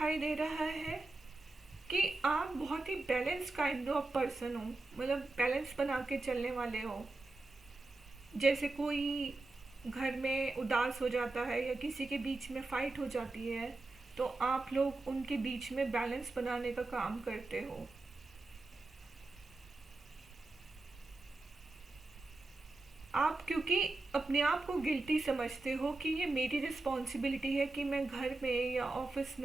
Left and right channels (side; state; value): left; quieter; 3.1 dB